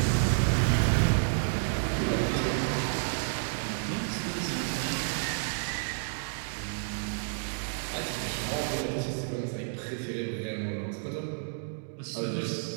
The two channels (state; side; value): silent; left; digital silence